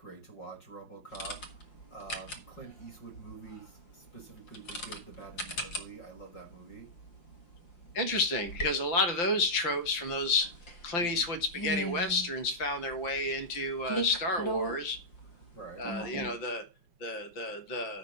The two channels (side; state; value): right; late; 5.8 ms